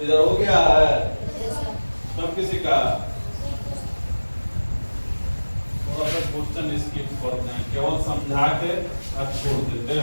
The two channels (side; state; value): both; inverted; correlation -1.00